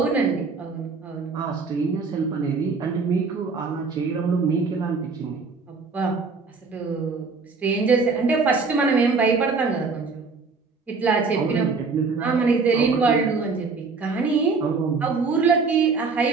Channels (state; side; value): quieter; left; 4.5 dB